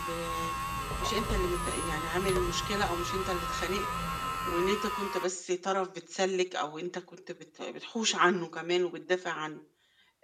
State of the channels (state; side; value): identical; both; correlation 1.00